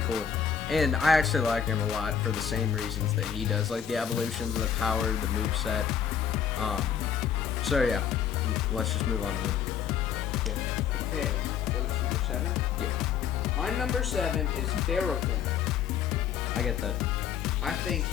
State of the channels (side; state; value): right; quieter; 8.2 dB